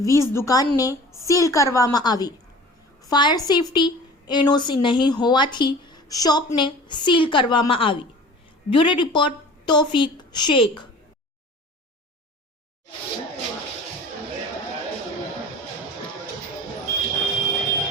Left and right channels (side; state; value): both; normal; correlation 0.43